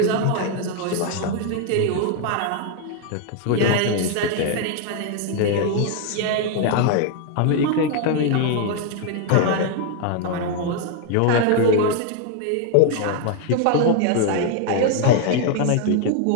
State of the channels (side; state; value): both; different; correlation 0.00